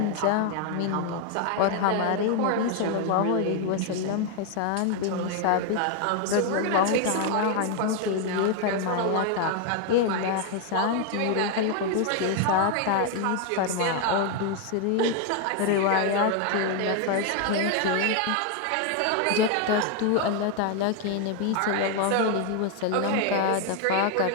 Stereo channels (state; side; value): different; both; correlation 0.01